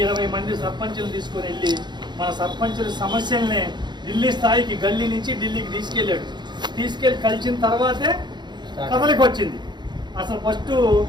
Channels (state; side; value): late; left; 0.21 ms